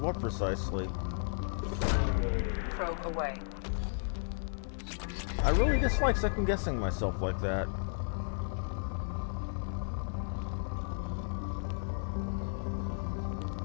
precisely. Probe away. I really dislike second guessing myself like that.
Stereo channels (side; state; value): right; silent; digital silence